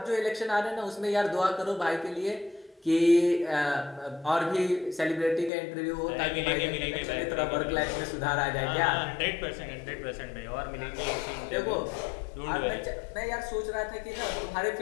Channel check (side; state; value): right; drops out; at 5.5 s